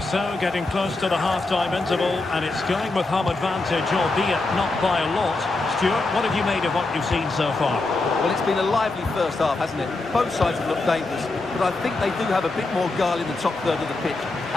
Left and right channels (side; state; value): right; quieter; 3.3 dB